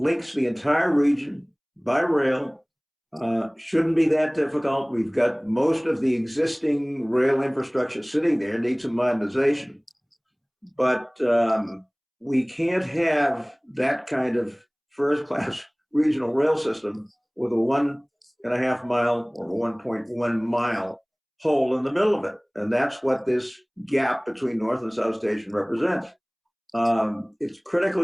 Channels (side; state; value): both; identical; correlation 1.00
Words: the entire region by rail. Shouldn't be that difficult. We've got most of the existing rail infrastructure sitting there, needs some modernization. But we can't have that kind of first-class regional rail system with a 1.5 mile or 1.1 mile hole in the middle of it. And that's what this gap between North and South Station represents. It's